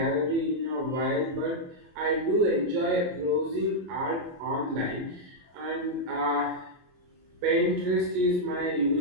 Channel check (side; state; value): left; late; 22 ms